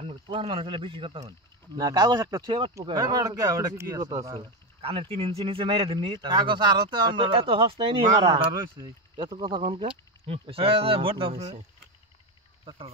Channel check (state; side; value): normal; both; correlation 0.14